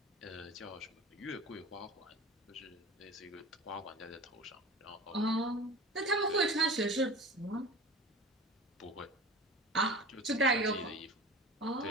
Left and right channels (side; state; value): both; normal; correlation 0.37